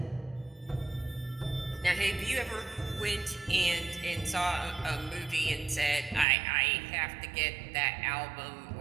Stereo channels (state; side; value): drops out; left; at 6.2 s